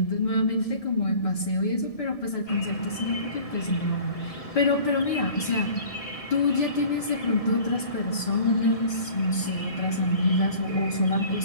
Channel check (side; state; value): right; late; 1.6 ms